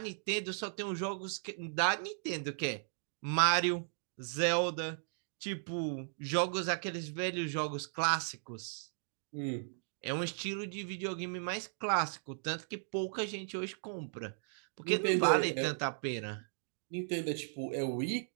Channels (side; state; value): left; silent; digital silence